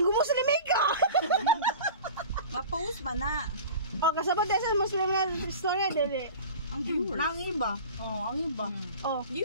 mo sa limika. Ma-post ba na? Oh, kasabot din sa Muslim na istorya dili. Ang viewers. Ang iba. Oh, ang iba. Oh,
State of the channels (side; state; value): both; inverted; correlation -0.37